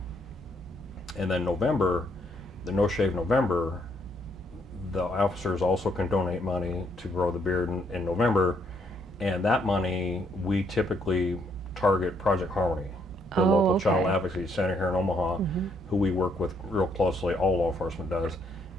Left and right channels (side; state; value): both; normal; correlation 0.71